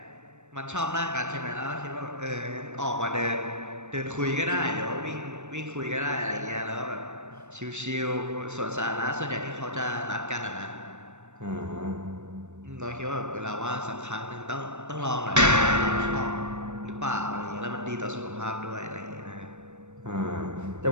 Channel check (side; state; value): left; late; 0.83 ms